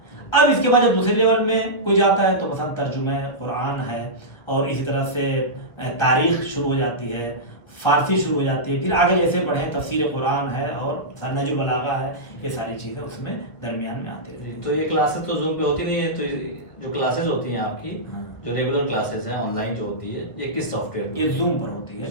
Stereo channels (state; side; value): late; right; 1.7 ms